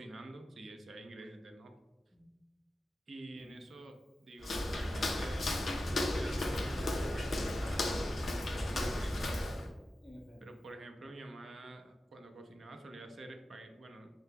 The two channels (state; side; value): normal; both; correlation 0.92